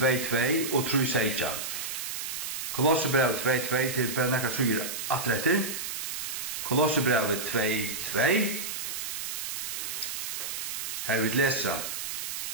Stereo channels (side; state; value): right; noise; hiss, 4 dB below the sound